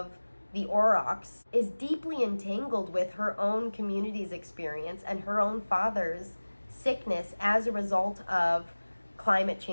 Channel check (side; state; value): both; inverted; correlation -1.00